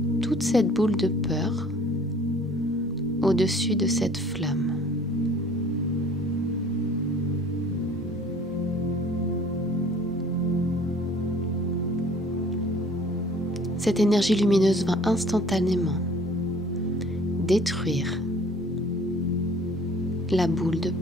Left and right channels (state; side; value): normal; both; correlation 0.52